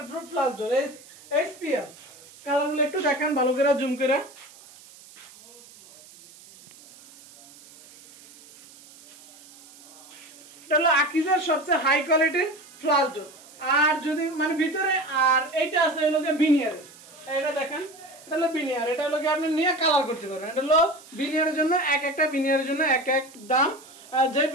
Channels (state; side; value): noise; right; hiss, 22 dB below the sound